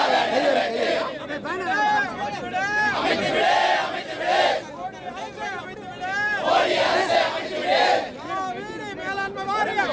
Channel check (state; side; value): identical; both; correlation 1.00